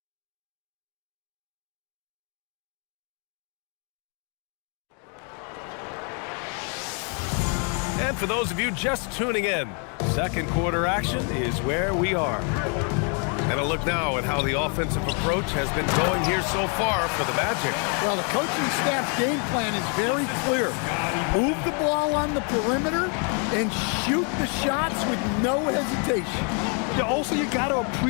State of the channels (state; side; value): quieter; right; 38.6 dB